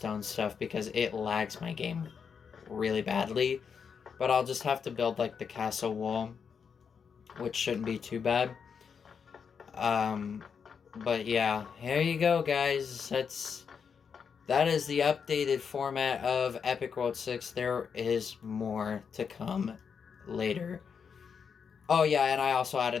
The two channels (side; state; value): right; quieter; 6.5 dB